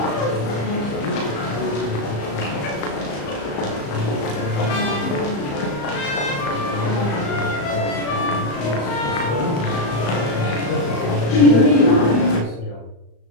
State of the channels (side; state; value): right; late; 35 ms